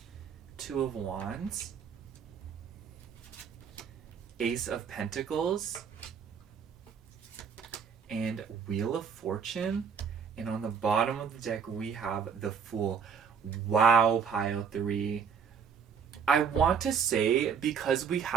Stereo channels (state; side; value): quieter; left; 6.7 dB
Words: 2 of Wands. Ace of Pentacles. And Wheel of Fortune. And on the bottom of the deck, we have the Fool. Wow, pile 3. I want to say, because we